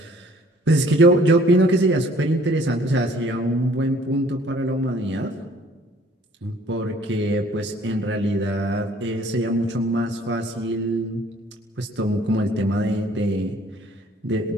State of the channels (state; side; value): normal; both; correlation 0.56